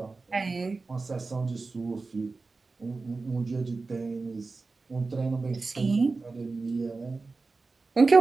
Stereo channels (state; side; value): quieter; left; 3.9 dB